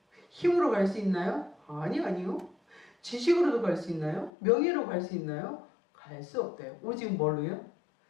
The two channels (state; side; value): drops out; right; at 4.3 s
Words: 힘으로 갈 수 있나요? 아니요. 지식으로도 갈 수 있나요? 명예로 갈 수 있나요? 갈 수 없대요. 오직 뭘로요?